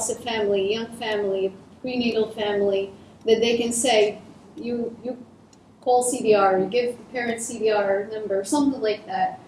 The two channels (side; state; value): both; identical; correlation 1.00